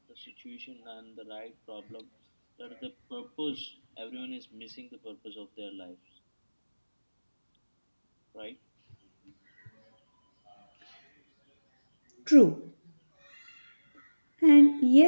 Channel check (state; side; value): inverted; both; correlation -1.00